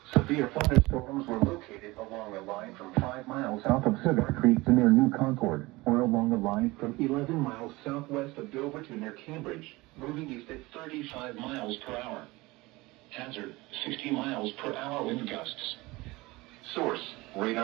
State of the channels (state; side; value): quieter; left; 21.4 dB